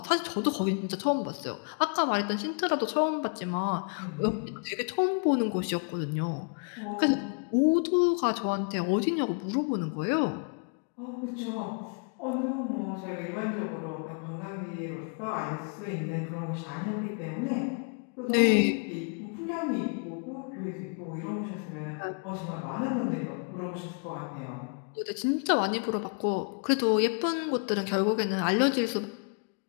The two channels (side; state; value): right; quieter; 40.0 dB